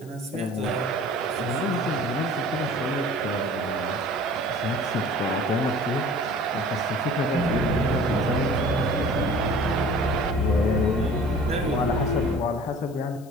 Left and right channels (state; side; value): noise; left; hiss, 25 dB below the sound